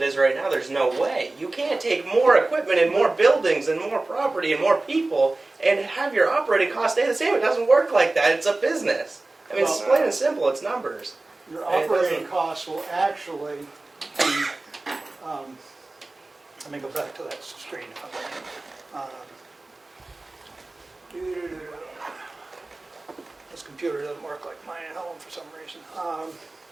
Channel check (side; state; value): left; quieter; 3.1 dB